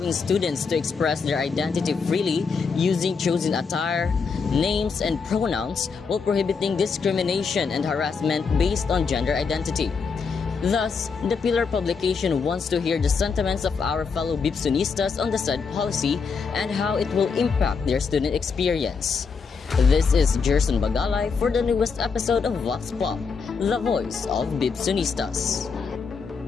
students to express their identity freely using chosen attire, names, and pronouns while prohibiting discrimination and harassment based on gender identity. Thus, the Pillar publication wants to hear the sentiments of our fellow Bipsonistas on the said policy and how it will impact their student experience. This is Jerson Bagalay for the newest episode of Vox Pop, the voice of Bipsonistas.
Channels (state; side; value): quieter; right; 5.3 dB